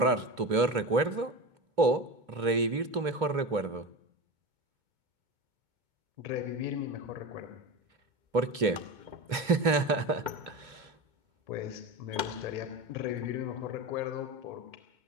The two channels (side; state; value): left; late; 2.8 ms